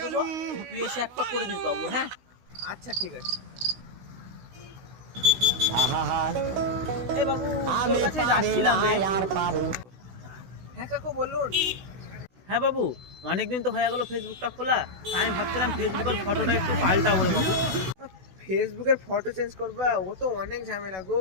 দেবো, তুই এসে একটা করে দিস বাবু। হ্যাঁ আচ্ছা ঠিক আছে। এ বাবু, তোর কাছে যাচ্ছিলাম রে। হ্যাঁ কাকু বলুন। হ্যাঁ বাবু, অনেকদিন তো হয়ে গেল ফেসবুকটা খোলা, তাই আমি ভাবছিলাম ফেসবুকের ফটোটা একটু পাল্টাবো রে বাবু। ফেসবুকের ফটো চেঞ্জ করবা, ও তো অনেক ঝামেলা গো।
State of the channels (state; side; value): late; left; 16 ms